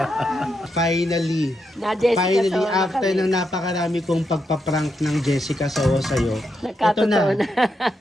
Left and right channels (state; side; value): normal; both; correlation 0.83